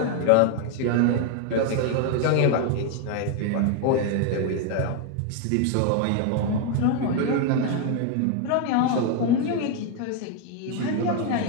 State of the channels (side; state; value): both; different; correlation 0.01